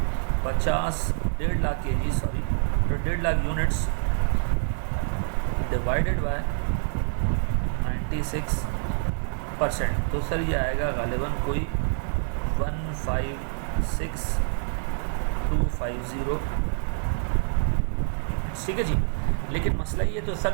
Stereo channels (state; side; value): silent; left; 61 dB below the other